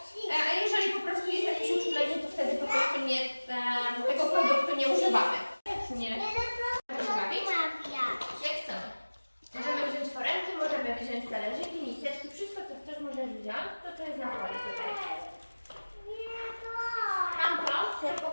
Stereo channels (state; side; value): inverted; both; correlation -1.00